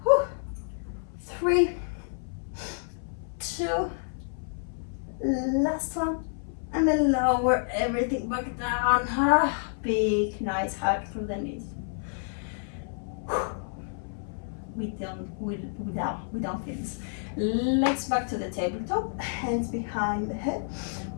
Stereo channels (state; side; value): silent; right; 58 dB below the other